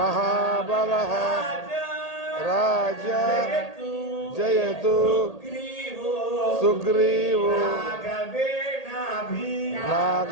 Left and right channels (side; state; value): right; late; 1.8 ms